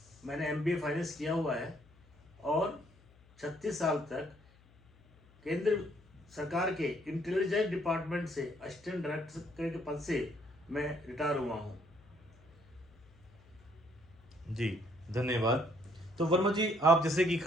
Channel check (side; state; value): left; noise; hum, 27 dB below the sound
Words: मैंने MBA फाइनेंस किया हुआ है और 36 साल तक केंद्र सरकार के इंटेलिजेंस डिपार्टमेंट से असिस्टेंट डायरेक्टर के पद से मैं रिटायर हुआ हूँ। जी धन्यवाद। तो वर्मा जी, आप जैसे कि